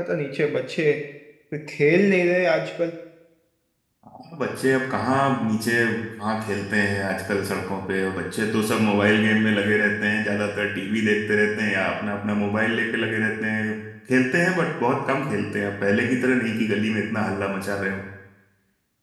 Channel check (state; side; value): identical; both; correlation 1.00